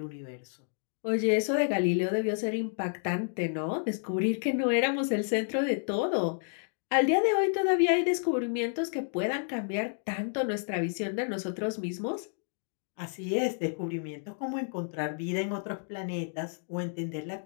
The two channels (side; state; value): right; silent; digital silence